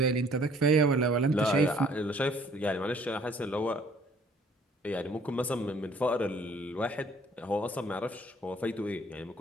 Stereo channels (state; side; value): normal; both; correlation 0.59